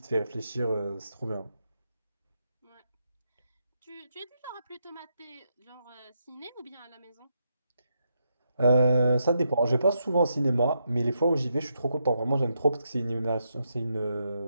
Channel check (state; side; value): inverted; both; correlation -0.81